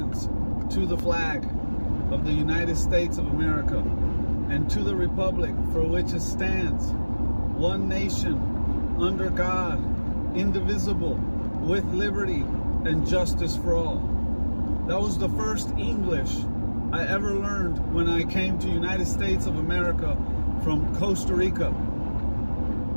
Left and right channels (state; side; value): inverted; both; correlation -1.00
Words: to the flag of the United States of America and to the republic for which it stands, one nation, under God, indivisible, with liberty and justice for all. That was the first English I ever learned when I came to United States of America from Costa Rica.